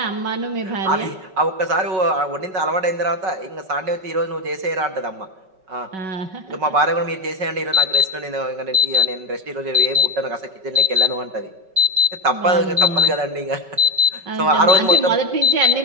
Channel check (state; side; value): late; left; 5.3 ms